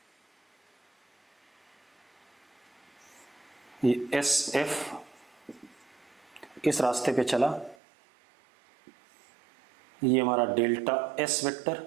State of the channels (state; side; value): drops out; left; at 7.8 s